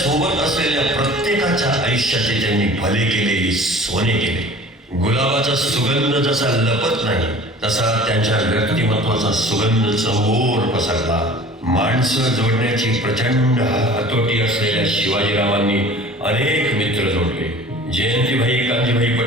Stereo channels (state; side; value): normal; both; correlation 0.44